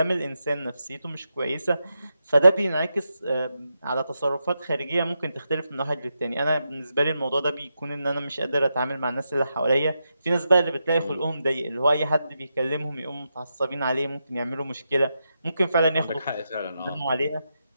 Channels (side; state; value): both; inverted; correlation -0.86